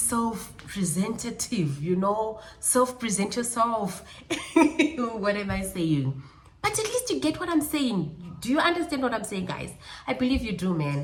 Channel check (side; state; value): both; identical; correlation 1.00